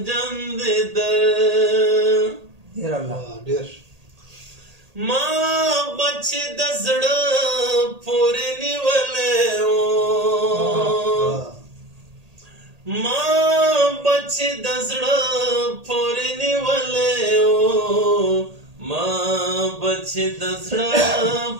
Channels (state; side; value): late; left; 1.8 ms